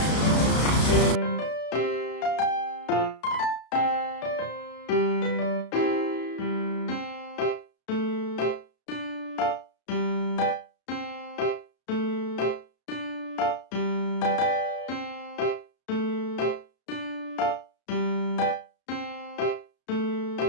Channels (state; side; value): late; right; 33 ms